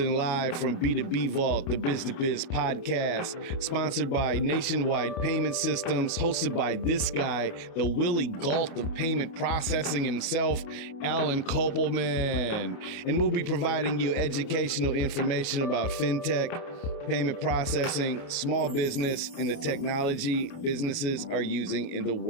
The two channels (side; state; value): right; late; 29 ms